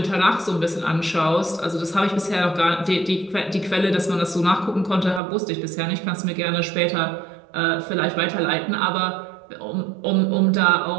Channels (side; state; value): left; drops out; at 5.2 s